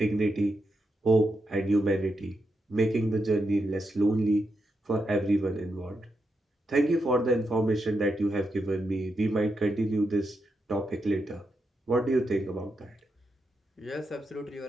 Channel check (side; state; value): both; normal; correlation 0.85